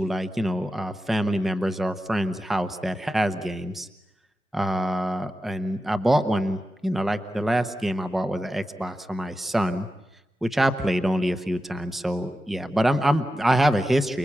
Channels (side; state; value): both; normal; correlation 0.91